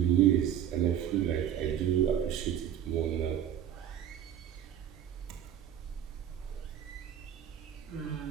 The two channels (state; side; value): quieter; left; 10.1 dB